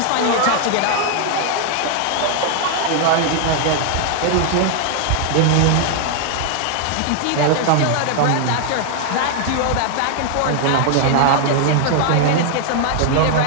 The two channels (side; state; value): both; different; correlation 0.00